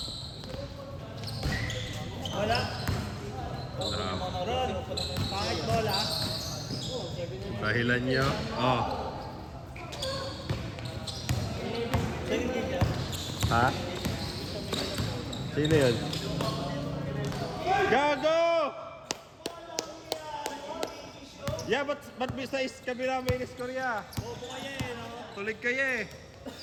Wala. Ron, pangit bola. Dahilan niyo. Oh. Ha? Sino yun? Gago! Yeah, ba't bisa is kabila may score ya? Bobo kayo eh, no? Tulig kayo eh.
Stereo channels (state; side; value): identical; both; correlation 1.00